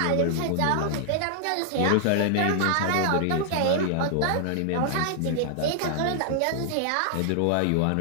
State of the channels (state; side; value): different; both; correlation 0.00